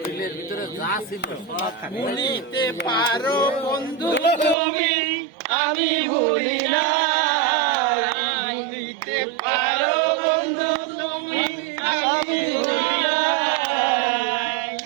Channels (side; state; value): left; drops out; at 4.5 s